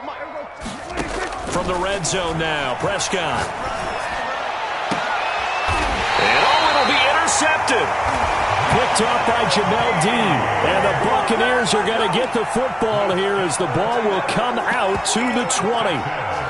From the red zone now, Prescott. And it'll be intercepted. Picked off by Jamel Dean. And the Buccaneers are going to get the football here as the ball will come out to the 20.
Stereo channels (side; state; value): both; identical; correlation 1.00